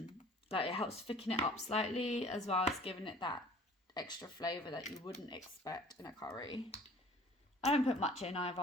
it helps thicken it up slightly, as well as giving it that extra flavour that you wouldn't expect in a curry. I don't put much in either.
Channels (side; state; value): both; normal; correlation 0.49